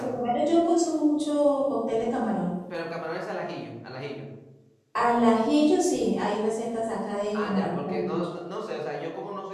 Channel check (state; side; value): identical; both; correlation 1.00